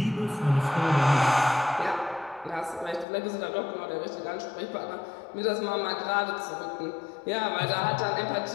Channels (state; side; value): drops out; right; at 3.1 s